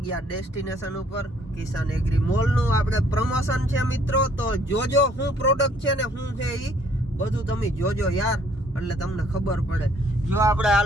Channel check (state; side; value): normal; both; correlation 0.62